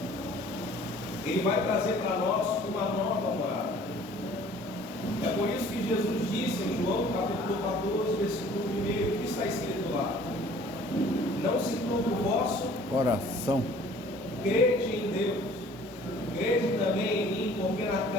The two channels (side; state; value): both; normal; correlation 0.52